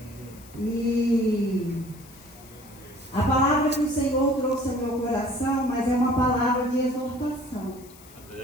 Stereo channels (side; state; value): left; noise; hiss, 22 dB below the sound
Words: E a palavra que o Senhor trouxe ao meu coração, mas é uma palavra de exortação.